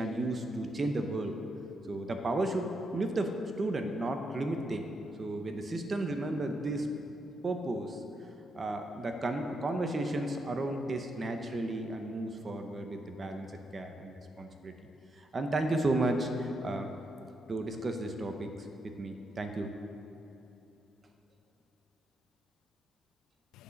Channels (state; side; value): normal; both; correlation 0.81